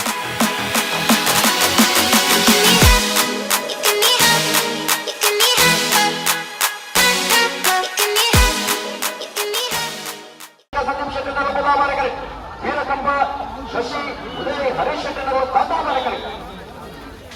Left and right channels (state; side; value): identical; both; correlation 1.00